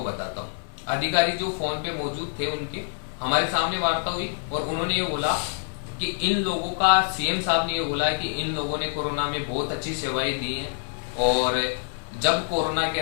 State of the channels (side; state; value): right; silent; 59 dB below the other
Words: बताता हूँ। अधिकारी जो फोन पे मौजूद थे उनके हमारे सामने वार्ता हुई और उन्होंने ये बोला कि इन लोगों का, सीएम साहब ने ये बोला है कि इन लोगों ने कोरोना में बहुत अच्छी सेवाएं दी हैं और जब कोरोना के